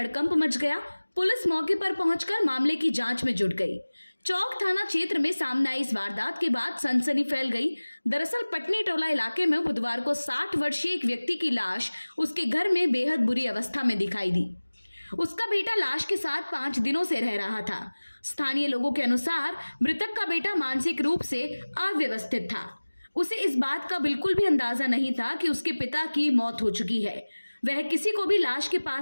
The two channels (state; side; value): inverted; both; correlation -1.00